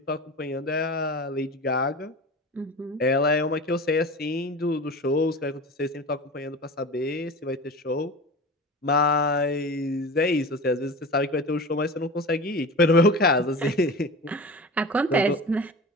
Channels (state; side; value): normal; both; correlation 0.33